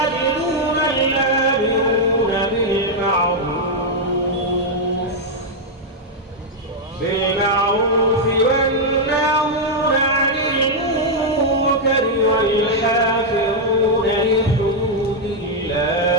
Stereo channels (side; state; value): both; normal; correlation -0.02